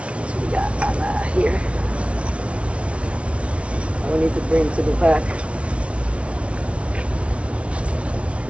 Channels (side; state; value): left; late; 0.061 ms